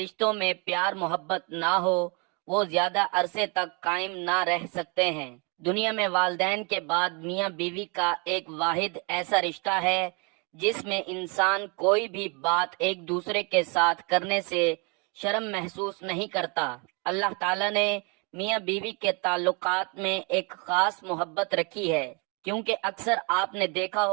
में प्यार मोहब्बत ना हो वो ज्यादा अरसे तक कायम ना रह सकते हैं। दुनिया में वालिदैन के बाद मियाँ बीवी का एक वाहिद ऐसा रिश्ता है जिसमें इंसान कोई भी बात एक दूसरे के साथ करने से शर्म महसूस नहीं करता। अल्लाह ताला ने मियाँ बीवी के ताल्लुकात में एक खास मोहब्बत रखी है, क्योंकि अक्सर आपने देखा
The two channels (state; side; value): quieter; left; 32.4 dB